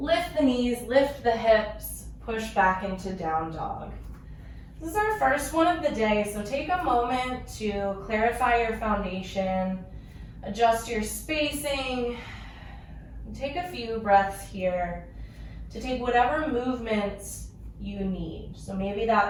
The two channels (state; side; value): identical; both; correlation 1.00